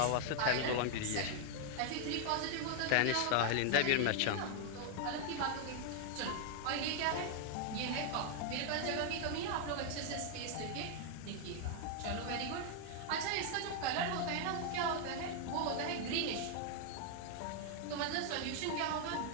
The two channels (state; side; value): different; both; correlation 0.00